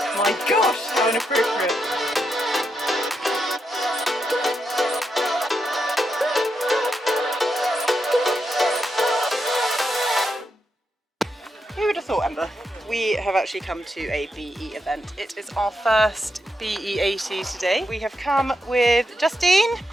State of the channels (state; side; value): normal; both; correlation 0.83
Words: My gosh, how inappropriate. Who would have thought, Ember? We have actually come to a BE event. It is our first BE80 today. We have come with Justine